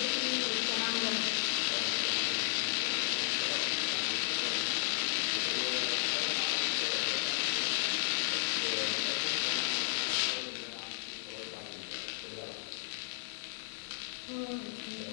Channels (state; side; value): silent; right; digital silence